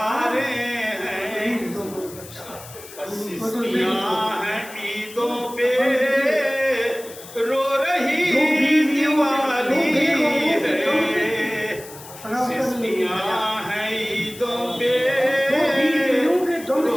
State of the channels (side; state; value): left; noise; hiss, 17 dB below the sound